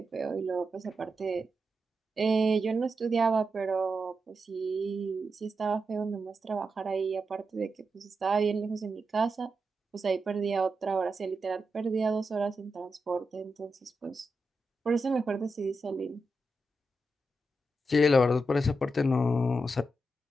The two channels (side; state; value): both; normal; correlation 0.87